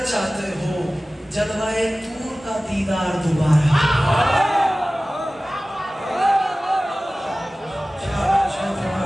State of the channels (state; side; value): normal; both; correlation 0.97